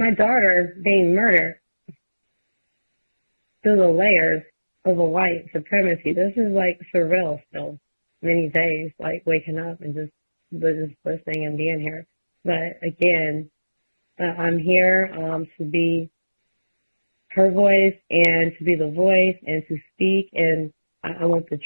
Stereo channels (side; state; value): both; inverted; correlation -1.00